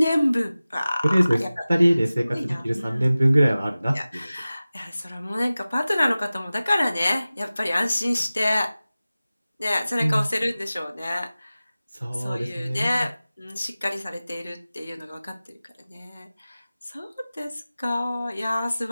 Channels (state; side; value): inverted; both; correlation -0.97